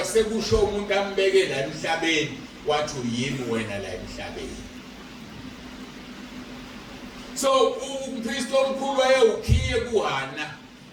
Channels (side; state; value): both; identical; correlation 1.00